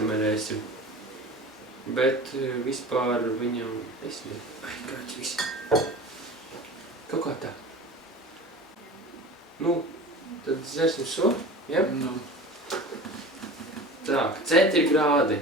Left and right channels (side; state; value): both; normal; correlation 0.36